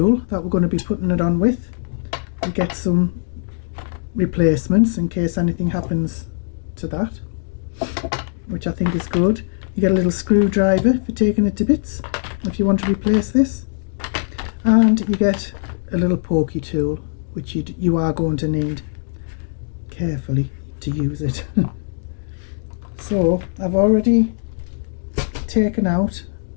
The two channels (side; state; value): right; silent; digital silence